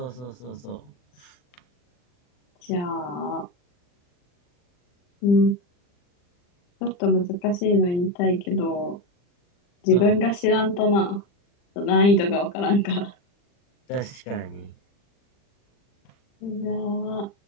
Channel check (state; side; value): late; right; 40 ms